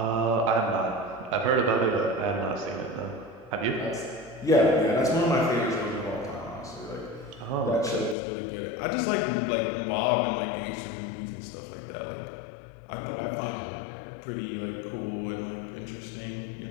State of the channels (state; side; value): drops out; right; at 8.2 s